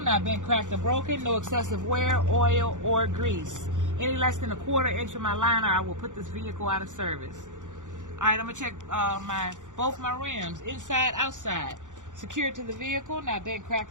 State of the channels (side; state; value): left; late; 0.86 ms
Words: not bent, cracked, or broken, no excessive wear, oil, or grease. Any less than a quarter inch of my liner, I will put this vehicle out of service. Alright, I'm going to check both my rims, inside, outside. Secured to the vehicle, not bent,